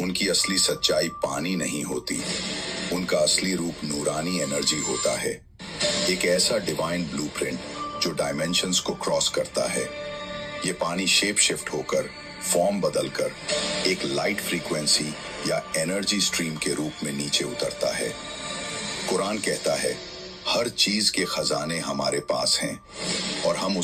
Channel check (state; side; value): identical; both; correlation 1.00